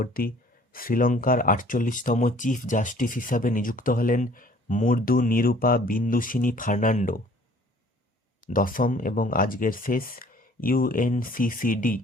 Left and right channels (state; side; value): normal; both; correlation 0.54